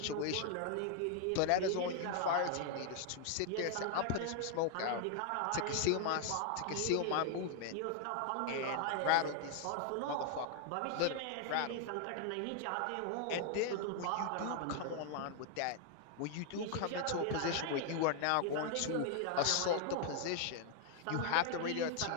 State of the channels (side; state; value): both; different; correlation 0.00